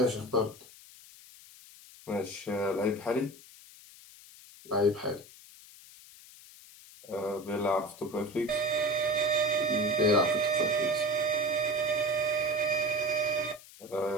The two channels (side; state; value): left; noise; hiss, 20 dB below the sound